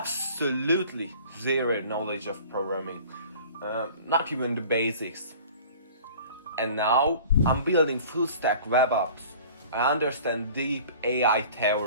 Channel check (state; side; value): inverted; both; correlation -0.45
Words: zero knowledge of programming, not even the basics. And now I'm building full stack web apps. I understand deep AI